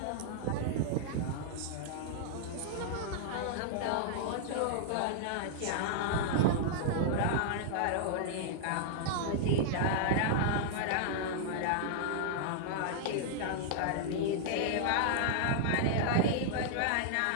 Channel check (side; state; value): both; different; correlation -0.01